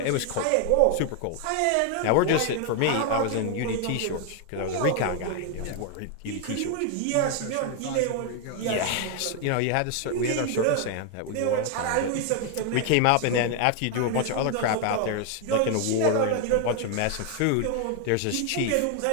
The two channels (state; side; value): different; both; correlation 0.00